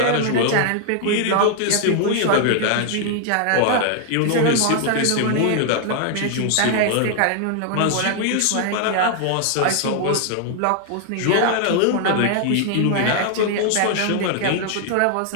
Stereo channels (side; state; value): both; different; correlation 0.00